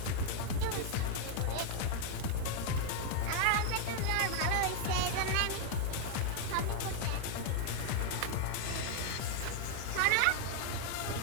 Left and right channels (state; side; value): different; both; correlation 0.00